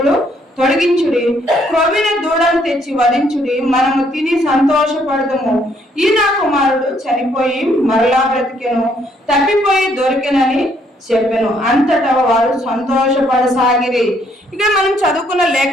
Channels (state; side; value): normal; both; correlation 0.69